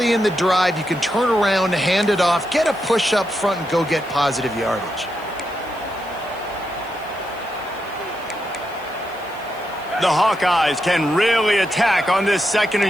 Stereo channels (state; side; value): noise; left; hiss, 25 dB below the sound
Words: in the drive you can turn around, hand it off, get a push up front, and go get positive yardage. The Hawkeyes can really attack on this second